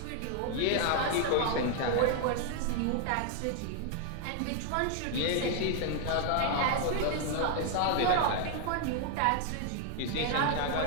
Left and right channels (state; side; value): different; both; correlation 0.00